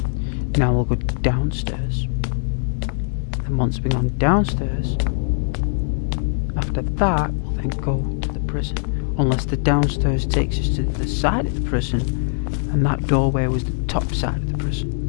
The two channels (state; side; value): silent; right; 65 dB below the other